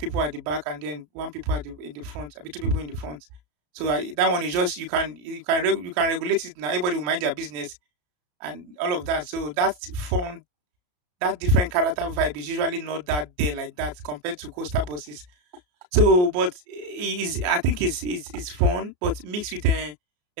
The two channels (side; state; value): left; late; 34 ms